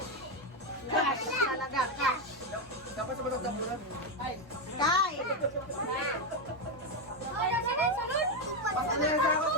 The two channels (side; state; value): both; normal; correlation 0.06